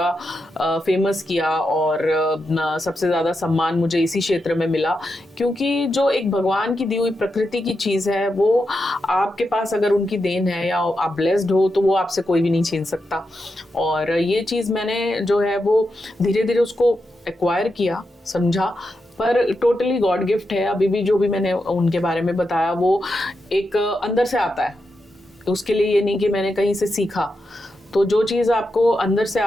फेमस किया और सबसे ज़्यादा सम्मान मुझे इसी क्षेत्र में मिला। क्योंकि जो एक भगवान की दी हुई प्रकृति की चीज़ है, वो आपके पास अगर उनकी देन है या आप ब्लेस्ड हो तो वो आपसे कोई भी नहीं छीन सकता। और ये चीज़ मैंने जो है वो धीरे धीरे उसको एक्वायर किया, समझा, पर टोटली गॉड गिफ्ट है। अभी भी जो भी मैंने उनके बारे में बताया वो एक अंदर से आता है, उसके लिए ये नहीं कि मैंने कहीं से सीखा। तो जो चीज़ आपको अंदर से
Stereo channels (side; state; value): both; normal; correlation 0.86